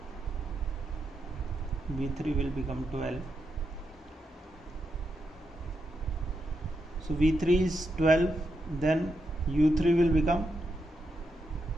v3 will become 12, so v3 is 12, then u3 will become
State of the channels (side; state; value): both; normal; correlation 0.84